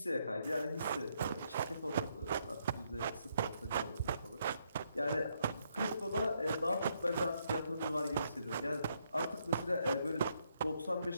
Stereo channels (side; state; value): both; inverted; correlation -0.75